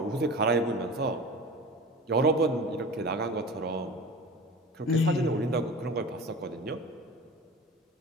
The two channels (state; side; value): normal; both; correlation 0.35